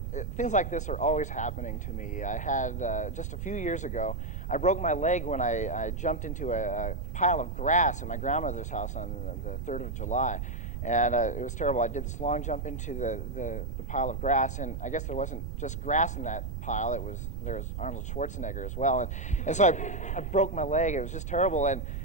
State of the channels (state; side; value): noise; right; rumble, 4 dB below the sound